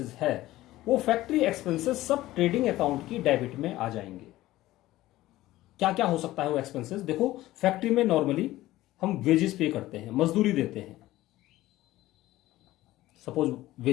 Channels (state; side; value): quieter; right; 16.3 dB